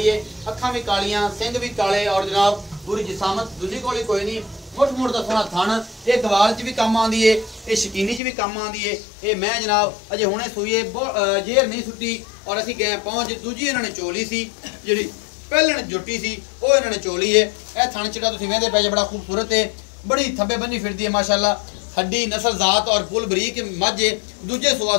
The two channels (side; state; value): right; drops out; at 8.2 s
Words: है, अखां भी कालियां, सिंह भी काले और जनाब पूरी जिसामत दूजी कोली कोई नहीं। मुठ मुठ का सोहना थन, ये गवाल च भी काम आती है, ये शकीनी च भी काम आती है। ये मैं जनाब अजे हुणे सूई है, जेर नहीं सुट्टी और असीं गए पहुँच। दूजी इन्होंने चोली सी जी पहलन जुटी सी वो इन्होंने चोली है। यह थन चिटा तुसीं वेंदे पे जे बड़ा खूबसूरत है, बड़ी थब्बे बनी फिरती है माशाल्लाह, हड्डी नस्ल जात और फुल बरीक मझ है, दूजे सुआ